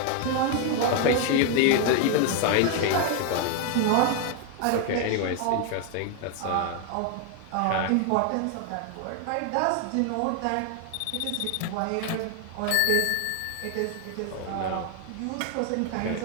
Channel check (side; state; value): both; different; correlation 0.01